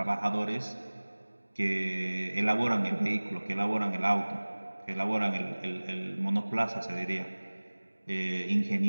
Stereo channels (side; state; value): both; inverted; correlation -1.00